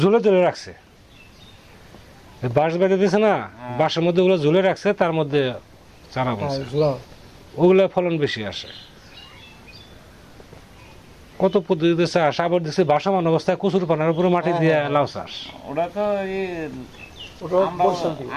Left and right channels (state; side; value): identical; both; correlation 1.00